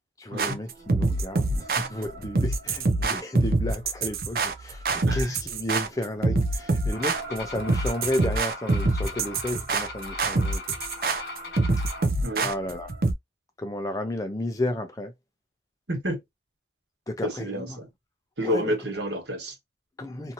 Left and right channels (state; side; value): normal; both; correlation 0.62